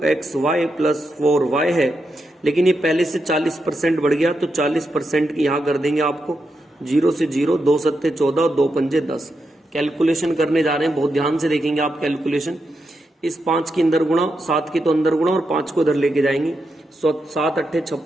प्लस 4y है, लेकिन ये पहले से 40% बढ़ गया, तो 40% की यहाँ कर देंगे आपको 0 से 0, 2 सत्ते 14, 2 पंजे 10। कैलकुलेशन करने जा रहे हैं, बहुत ध्यान से देखेंगे आप कैलकुलेशन। इस 5 के अंदर गुणा, 7 की तो अंदर गुणा, और 5 को इधर लेके जाएंगे। 7 अट्ठे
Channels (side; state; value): both; normal; correlation 0.85